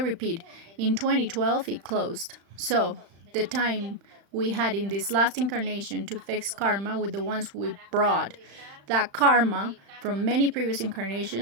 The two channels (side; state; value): left; late; 35 ms